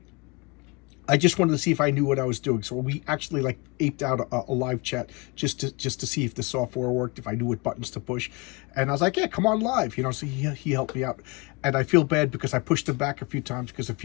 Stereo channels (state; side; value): quieter; right; 27.3 dB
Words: I just wanted to see if I knew what I was doing. So we actually like aped out a live chat just to see if the software worked, if I knew what buttons to push. And I was like, yeah, come on live, you know. So he helped me out, and I feel bad because I pushed him back a few times because a